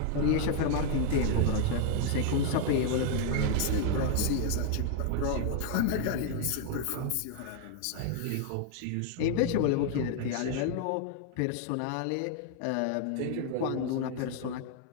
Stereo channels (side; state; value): both; different; correlation 0.00